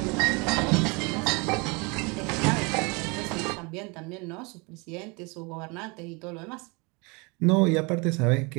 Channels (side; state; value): left; quieter; 28.9 dB